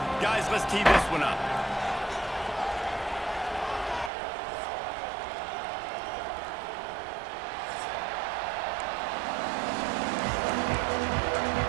Guys, let's tee this one up.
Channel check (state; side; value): drops out; left; at 4.1 s